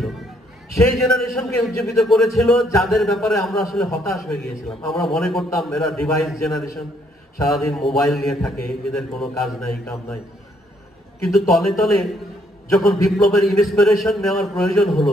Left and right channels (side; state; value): both; normal; correlation 0.69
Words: সেই জেনারেশনকে উজ্জীবিত করেছিল যাদের ব্যাপারে আমরা আসলে হতাশ হয়ে গিয়েছিলাম। আমরা মনে করতাম এরা ডিভাইস জেনারেশন, সারাদিন মোবাইল নিয়ে থাকে, এদের কোনো কাজ নাই, কাম নাই। কিন্তু তলে তলে যখন বিপ্লবের ইন্সপিরেশন নেওয়ার প্রয়োজন হলো,